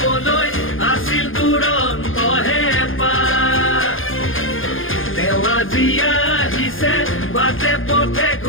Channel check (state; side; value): late; right; 0.59 ms